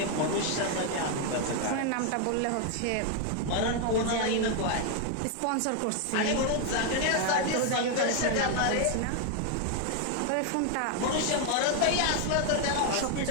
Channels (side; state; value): both; different; correlation 0.00